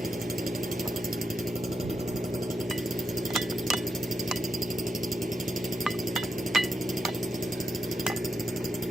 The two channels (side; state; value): both; normal; correlation 0.84